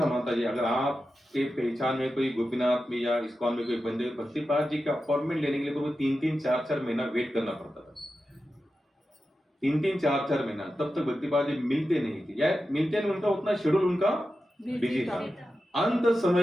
माता जी, अगर आपके पहचान में कोई गोपीनाथ में या इस्कॉन में कोई बंदे, भक्तिपाद जी का अपॉइंटमेंट लेने के लिए तो 3-3, 4-4 महीना वेट करना पड़ता था। 3-3, 4-4 महीना, तब तक भक्तिपाद जी मिलते नहीं थे, या मिलते नहीं, उनका उतना शेड्यूल उनका बिजी था। अंत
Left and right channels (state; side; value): normal; both; correlation 0.91